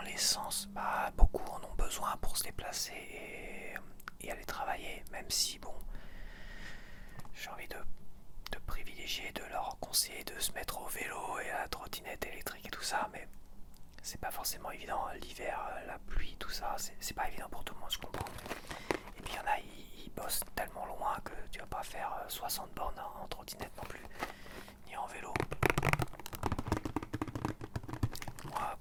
l'essence, bah beaucoup en ont besoin pour se déplacer et aller travailler, même si bon, j'ai envie de privilégier, de leur conseiller de se mettre au vélo et à la trottinette électrique et tout ça, mais c'est pas forcément évident, l'hiver, la pluie, tout ça, c'est pas évident pour tout le monde, je comprends. Et puis il y en a, ils bossent tellement loin que tu vas pas faire 60 bornes en trottinette non plus, ni en vélo. Moi,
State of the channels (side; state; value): both; identical; correlation 1.00